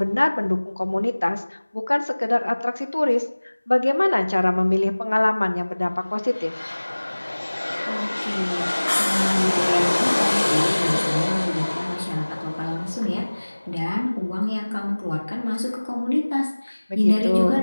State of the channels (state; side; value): inverted; both; correlation -1.00